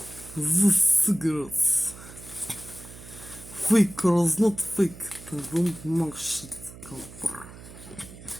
The cigarettes. Fake or not fake, I don't know shit, cover.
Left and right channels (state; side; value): noise; right; hum, 17 dB below the sound